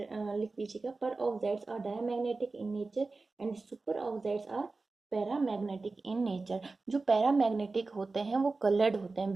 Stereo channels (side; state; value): left; quieter; 3.7 dB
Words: लिख लीजिएगा। Peroxides are diamagnetic in nature and super oxides are paramagnetic in nature. जो पैरामैग्नेटिक होते हैं वो कलर्ड होते हैं,